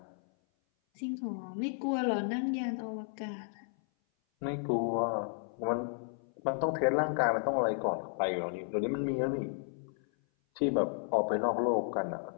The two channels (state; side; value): silent; right; 56 dB below the other